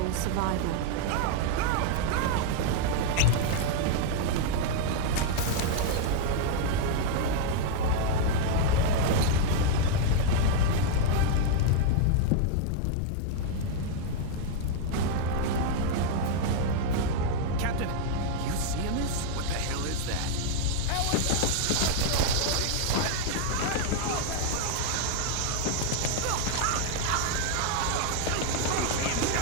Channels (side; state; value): both; different; correlation 0.00